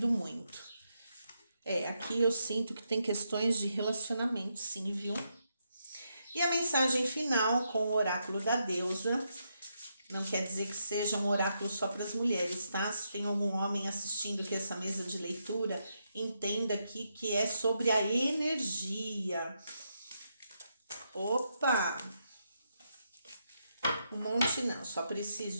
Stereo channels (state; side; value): inverted; both; correlation -0.81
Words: muito. Aqui eu sinto que tem questões de relacionamento, sim, viu? E a mensagem final com o oráculo da deusa. Não quer dizer que seja um oráculo só para as mulheres, tá? Se tem algum homem assistindo aqui essa mesa de leitura, entenda aqui que é sobre a energia. Opa! Um monte não, só